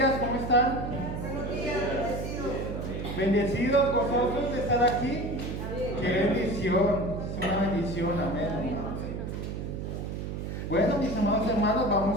¿cómo están? Buenos días, bendecidos. Bendecidos, gozosos de estar aquí. Qué bendición, es una bendición, amén. Bueno, mis amados hermanos,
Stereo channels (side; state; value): right; noise; hum, 5 dB below the sound